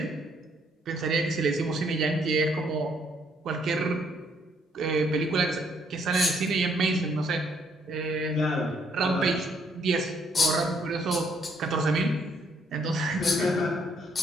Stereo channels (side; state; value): both; normal; correlation 0.69